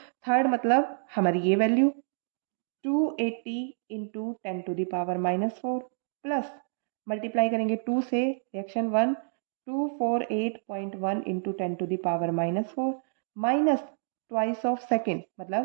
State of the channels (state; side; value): silent; left; digital silence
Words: थर्ड मतलब हमारी ये value 280 into 10 to the power -4 plus multiply करेंगे 2 से reaction 1, 248.1 into 10 to the power -4 minus twice of second